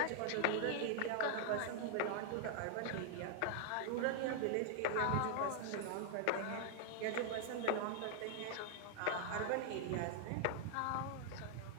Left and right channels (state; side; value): different; both; correlation 0.00